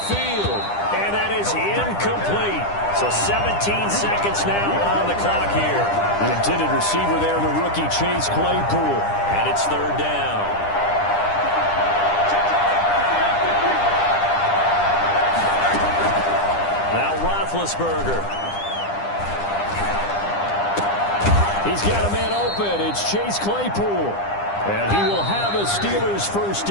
field. And that is incomplete. So 17 seconds now on the clock here. The intended receiver there, the rookie Chase Claypool. And it's 3rd down. Now Roethlisberger. He's got a man open. It's Chase Claypool. And he will have a Steelers 1st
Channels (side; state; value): right; late; 9.9 ms